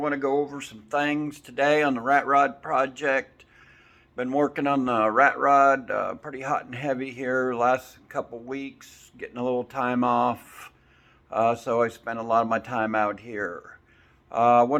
to go over some things today on the rat rod project. Been working on the rat rod pretty hot and heavy here last couple weeks, getting a little time off. So I spent a lot of my time out here. I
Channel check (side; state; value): both; identical; correlation 1.00